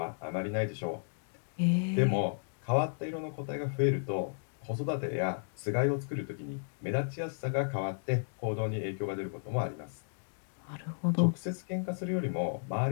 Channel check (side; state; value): right; silent; digital silence